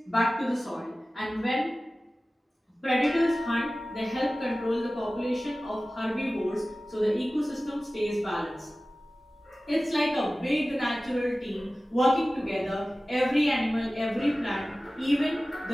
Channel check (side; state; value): both; normal; correlation 0.96